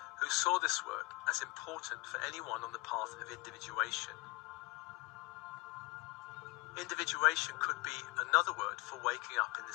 who saw this work as important for anyone on the path of individuation. Individuation could be another word for waking up in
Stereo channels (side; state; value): right; quieter; 23.6 dB